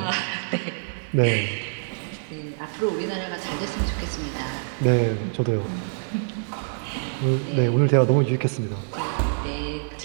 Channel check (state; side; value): silent; left; digital silence